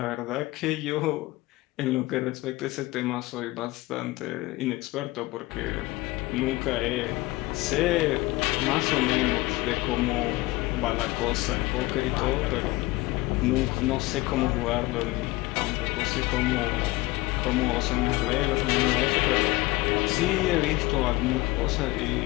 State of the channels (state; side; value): quieter; right; 20.4 dB